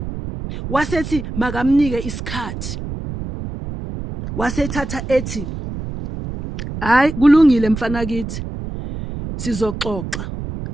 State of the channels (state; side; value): noise; right; rumble, 8 dB below the sound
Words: Wasethi makamnike isikhathi. Wasethatha ethi, "Hayi kulungile mfana kithi. Sizoxoxa.